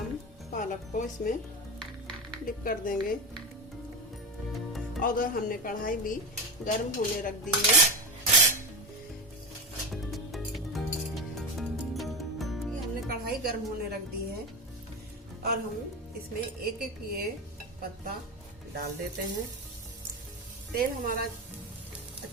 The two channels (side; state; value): both; normal; correlation 0.18